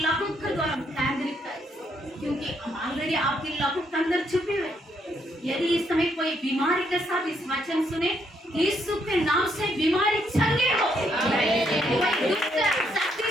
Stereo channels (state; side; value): normal; both; correlation 0.74